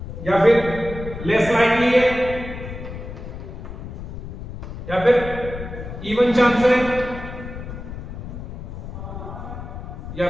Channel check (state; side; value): noise; left; rumble, 9 dB below the sound